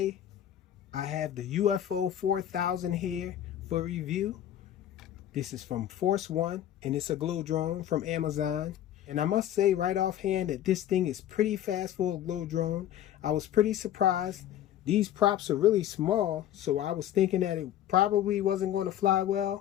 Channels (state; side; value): quieter; right; 11.4 dB